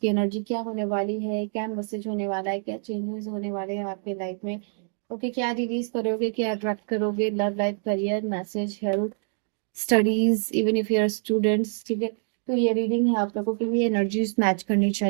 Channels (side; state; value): left; silent; 61 dB below the other